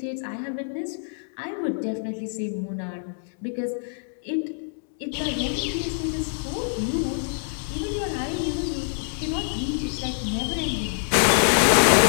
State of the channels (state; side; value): silent; right; digital silence